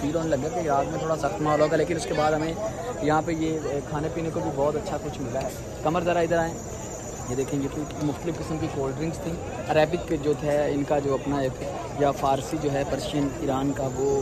होने लगा कि इराक में थोड़ा सख्त माहौल होगा। लेकिन उसके बाद हमें यहाँ पे ये खाने पीने को भी बहुत अच्छा कुछ मिला है। कमर ज़रा इधर आएँ, ये देखेंगे कि मुख्तलिफ़ किस्म की कोल्ड ड्रिंक्स थी। अरेबिक जो है इनका जो अपना एक, या फ़ारसी जो है पर्शियन ईरान का, वो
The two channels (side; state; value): both; identical; correlation 1.00